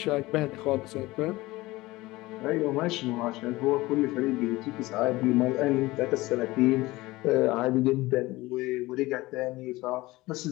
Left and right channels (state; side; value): quieter; right; 19.7 dB